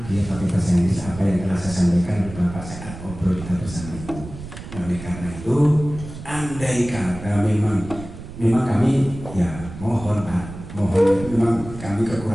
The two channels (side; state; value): right; noise; rumble, 13 dB below the sound